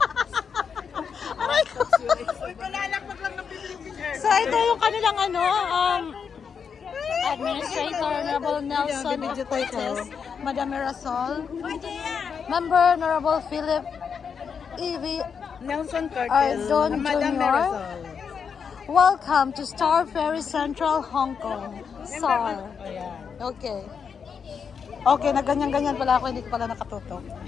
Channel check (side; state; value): right; quieter; 6.5 dB